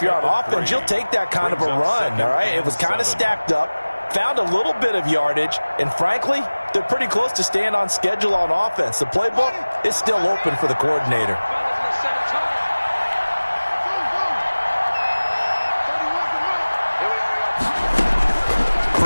you're on offense, you'll take that kind of a run, all right? It was kind of stacked up, found a little bit of yardage, and frankly, they're pretty close to staying on schedule on offense. The playbook is still open for the coordinator.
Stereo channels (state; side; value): inverted; both; correlation -1.00